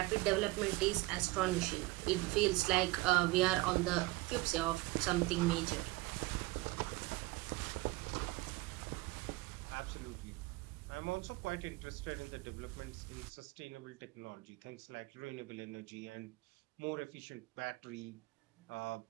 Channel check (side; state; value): left; quieter; 21.5 dB